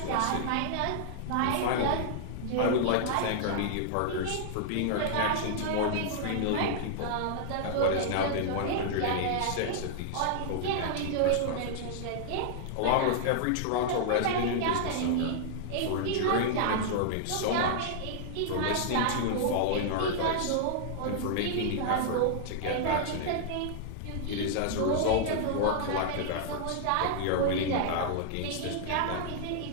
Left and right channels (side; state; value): both; different; correlation -0.01